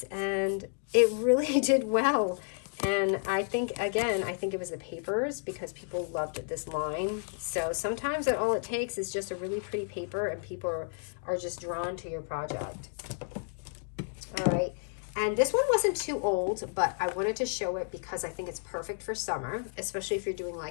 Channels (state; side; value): silent; right; 57 dB below the other